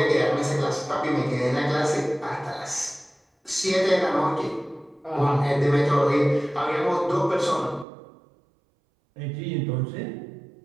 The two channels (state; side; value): drops out; left; at 7.9 s